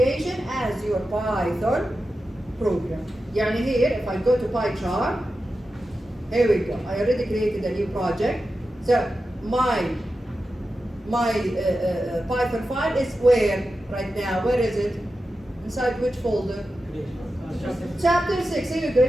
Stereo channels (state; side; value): normal; both; correlation 0.91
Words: as your Python program. يعني here, if I go to PyCharm, here we go. I already created a new project. So my Python file is where right now? Where is it? Inside which folder? Chapter 6. Here we go.